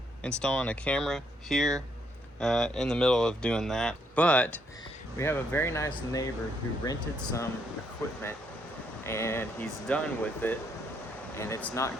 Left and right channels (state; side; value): normal; both; correlation 0.73